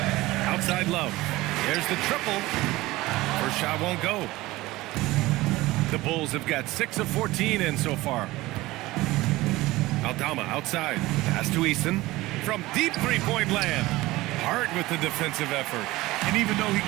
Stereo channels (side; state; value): left; quieter; 19.0 dB